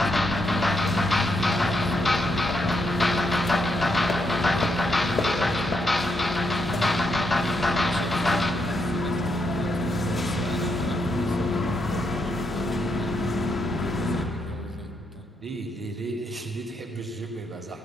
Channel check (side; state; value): both; normal; correlation 0.79